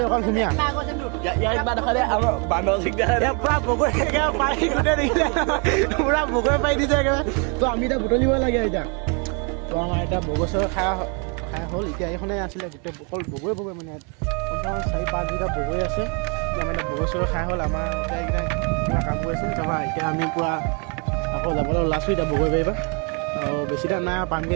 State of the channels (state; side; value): quieter; left; 35.2 dB